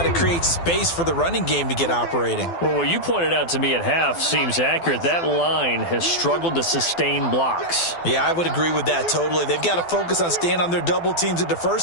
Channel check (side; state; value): right; late; 12 ms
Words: to create space for the running game to get operating. Well, what you pointed out to me at half seems accurate. That line has struggled to sustain blocks. Yeah, I would agree with that totally. They've got to focus on staying on their double teams at the